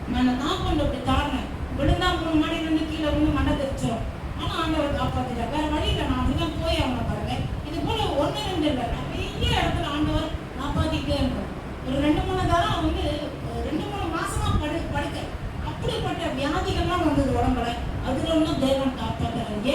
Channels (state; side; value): identical; both; correlation 1.00